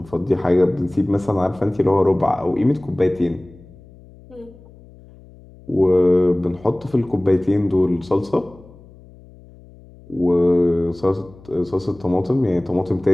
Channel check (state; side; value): noise; left; hum, 23 dB below the sound